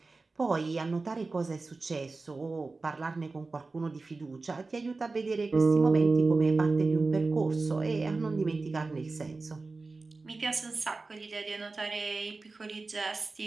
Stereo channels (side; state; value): left; quieter; 3.7 dB